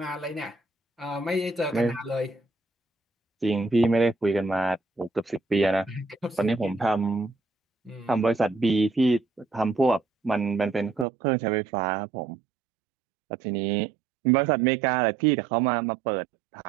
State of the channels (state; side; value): drops out; left; at 11.1 s